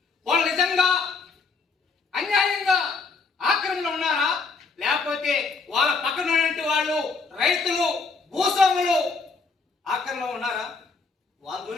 వాళ్ళు నిజంగా అన్యాయంగా ఆక్రమణలో ఉన్నారా? లేకపోతే వాళ్ళ పక్కన వాళ్ళు రైతులు, భూస్వాములు ఆక్రమణలో ఉన్నారా? వాళ్ళ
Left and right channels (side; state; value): right; quieter; 4.4 dB